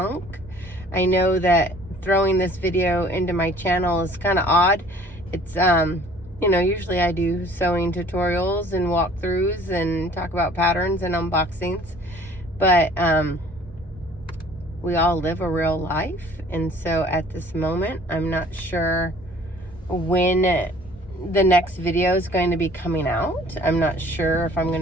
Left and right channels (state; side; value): normal; both; correlation 0.52